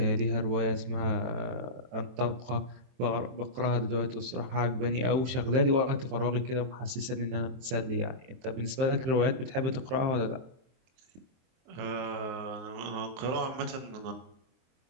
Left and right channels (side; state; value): left; late; 23 ms